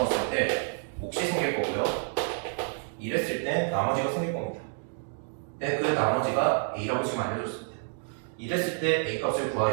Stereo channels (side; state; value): left; silent; 59 dB below the other